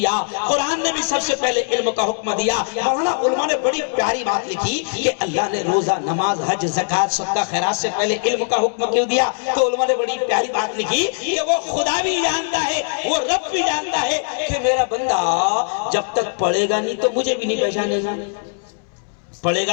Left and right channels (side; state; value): right; silent; 65 dB below the other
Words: قرآن نے بھی سب سے پہلے علم کا حکم دیا۔ مولانا علماء نے بڑی پیاری بات لکھی کہ اللہ نے روزہ، نماز، حج، زکوٰۃ، صدقہ، خیرات سے پہلے علم کا حکم کیوں دیا؟ تو علماء نے بڑی پیاری بات لکھی کہ وہ خدا بھی جانتا ہے، وہ رب بھی جانتا ہے کہ میرا بندہ جب تک پڑھے گا نہیں تو مجھے بھی نہیں پہچانے گا۔ پڑھے